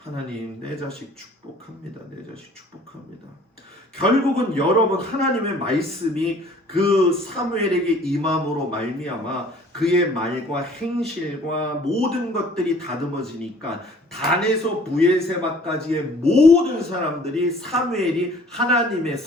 내 자식 축복합니다. 내 자식 축복합니다. 결국은 여러분, 하나님의 말씀이 그 사무엘에게 임함으로 말미암아 그의 말과 행실과 모든 것들이 다듬어지니까 단에서 브엘세바까지의 모든 사람들이 사무엘이 하나님의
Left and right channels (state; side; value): normal; both; correlation 0.53